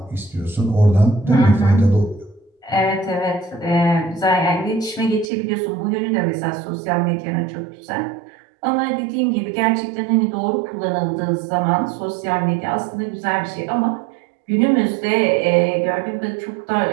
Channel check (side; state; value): left; drops out; at 5.3 s